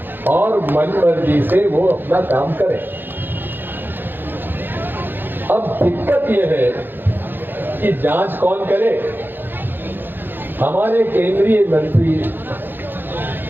और मन मर्जी से वो अपना काम करें। अब दिक्कत यह है कि जांच कौन करे? हमारे केंद्रीय मंत्री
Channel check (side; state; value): left; late; 0.096 ms